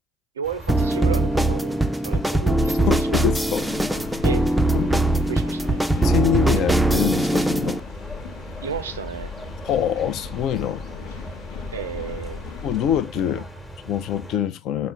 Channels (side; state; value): both; normal; correlation 0.67